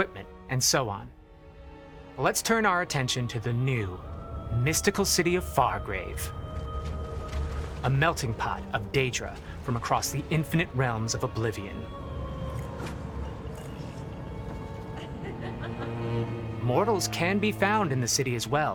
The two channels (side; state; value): both; identical; correlation 1.00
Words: and so on. Let's turn our attention to the new, mystical city of Fargrave. A melting pot of Daedra from across the infinite realms of Oblivion. Mortals can be found in the city as